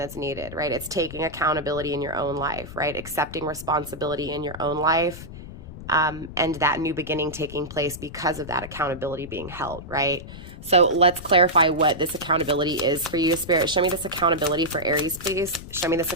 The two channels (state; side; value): noise; left; rumble, 13 dB below the sound